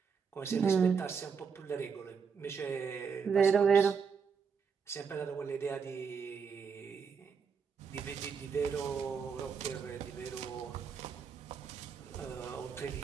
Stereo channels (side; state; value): left; quieter; 6.1 dB